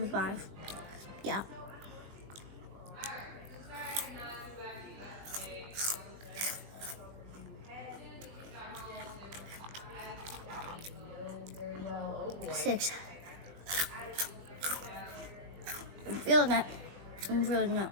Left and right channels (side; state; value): left; late; 20 ms